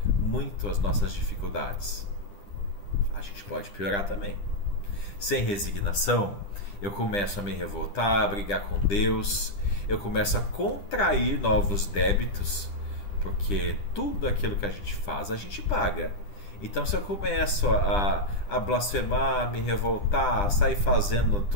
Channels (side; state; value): right; late; 10 ms